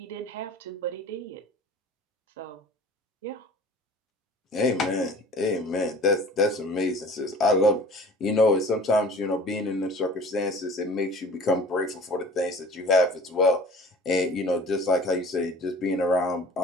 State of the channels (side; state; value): both; normal; correlation 0.44